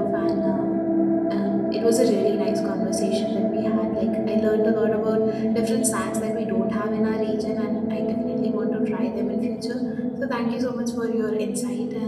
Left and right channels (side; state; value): both; identical; correlation 1.00